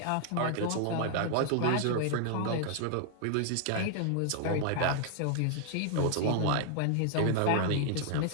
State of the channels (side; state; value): both; different; correlation 0.00